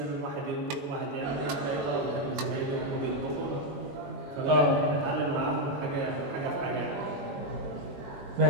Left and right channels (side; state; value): left; late; 21 ms